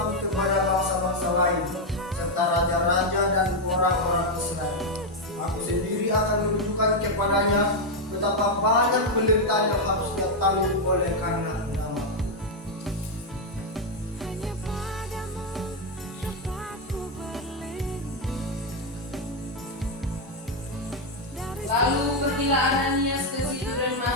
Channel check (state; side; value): normal; both; correlation 0.02